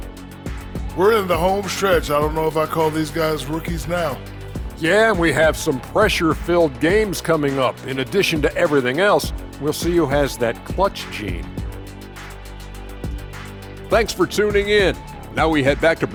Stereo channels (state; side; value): identical; both; correlation 1.00